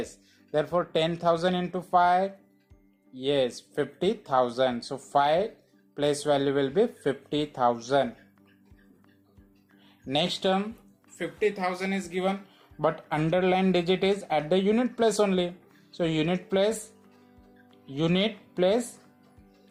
Therefore 10,000 into 5. Yes, 50,000. So 5 place value will be 50,000. Next term, 50,000 is given, but underlined digit is at the unit place only. So unit place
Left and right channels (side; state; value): both; identical; correlation 1.00